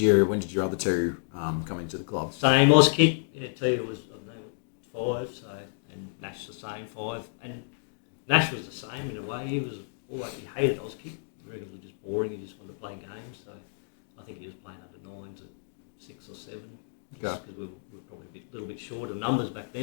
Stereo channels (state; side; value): silent; right; digital silence